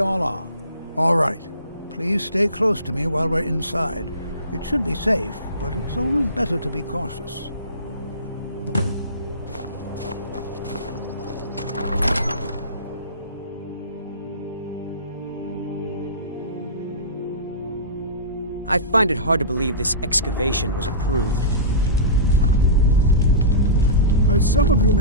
are. All right. Please stay close to me while we're inside. It should be safe, but it's always better to be cautious. I find it hard to believe this excavation was approved. As some of you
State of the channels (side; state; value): both; inverted; correlation -0.31